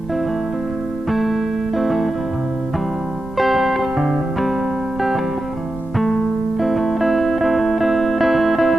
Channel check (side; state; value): right; noise; rumble, 15 dB below the sound